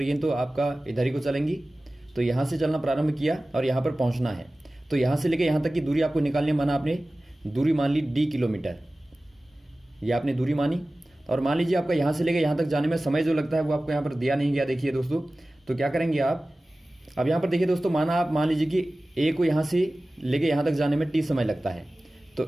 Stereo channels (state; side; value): normal; both; correlation 0.97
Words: है तो आपका इधर ही को चलेंगी। तो यहाँ से चलना प्रारंभ किया और यहाँ पर पहुँचना है, तो यहाँ से लेकर यहाँ तक की दूरी आपको निकालनी। माना आपने दूरी मान ली d किलोमीटर, ये आपने दूरी मानी। और मान लीजिए आपका यहाँ से लेकर यहाँ तक जाने में समय जो लगता है वो आपको यहाँ पर दिया नहीं गया। देखिए दोस्तों, तो क्या करेंगे आप, अब यहाँ पर देखिए दोस्तों, माना आप मान लीजिए कि ए को यहाँ से लेकर यहाँ तक जाने में t समय लगता है,